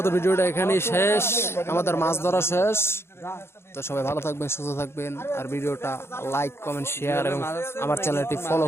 ভিডিওটা এখানেই শেষ আমাদের মাছ ধরা শেষ তো সবাই ভালো থাকবেন সুস্থ থাকবেন আর ভিডিওটা লাইক কমেন্ট শেয়ার এবং আমার চ্যানেলটি ফলো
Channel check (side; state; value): right; late; 0.12 ms